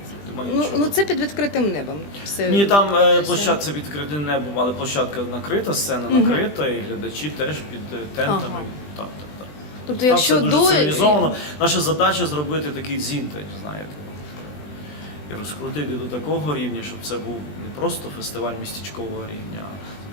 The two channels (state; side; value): late; right; 20 ms